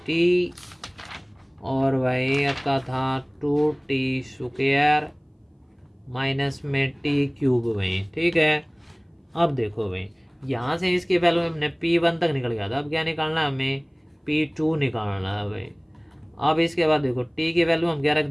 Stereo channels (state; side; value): identical; both; correlation 1.00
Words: और भाई आपका था 2t स्क्वायर माइनस में t³ भाई, ठीक है। अब देखो भाई यहाँ से इसकी वैल्यू हमने P1 तक निकल गया था, अब क्या निकालना है हमें P2 निकालना है भाई। अब इसके बाद देखो t की वैल्यू हम क्या रख